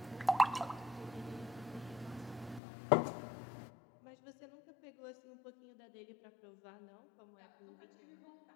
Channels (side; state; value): right; drops out; at 2.6 s